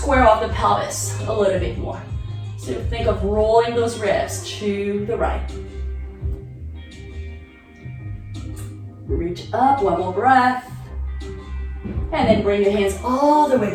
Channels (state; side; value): identical; both; correlation 1.00